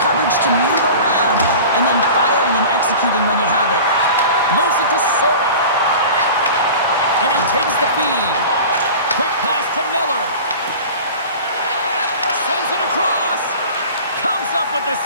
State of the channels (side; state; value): both; inverted; correlation -0.37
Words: coverage to move around, and then firing and executing when you have it. Moves it to Sorda. And he takes the feed. Quick pass to Miller. Sends it across. Comes up with the